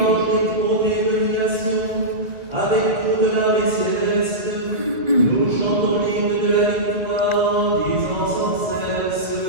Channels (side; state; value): left; late; 1.7 ms